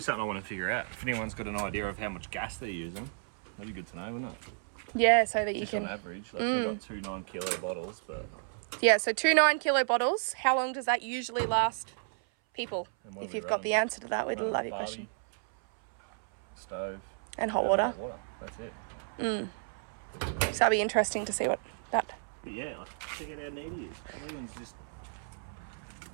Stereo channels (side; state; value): left; silent; 56 dB below the other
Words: something I want to figure out. If anyone's got an idea of how much gas they're using, that'd be good to know, wouldn't it? Yeah, so that you Just can. on average, like we've got 2 9-kilo bottles, but Yeah, so 2 9-kilo bottles. How long does that usually last people? And what If do we you've got run? the answer to that, we'd Run love your barbie, question. Stove, And hot and water. hot water. That's it. So that'll be interesting to see what that. But yeah, like, check out how neat he is. Everything's just